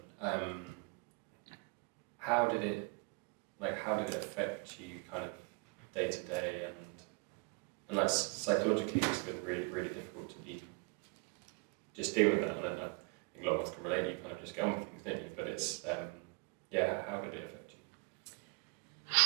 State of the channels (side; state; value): left; quieter; 33.7 dB